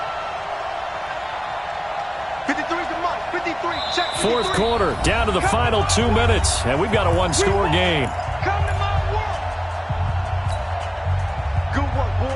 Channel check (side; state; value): both; identical; correlation 1.00